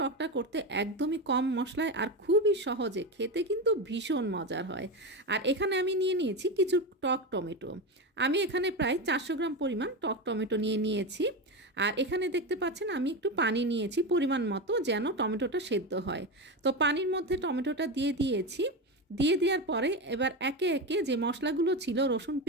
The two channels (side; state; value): both; normal; correlation 0.17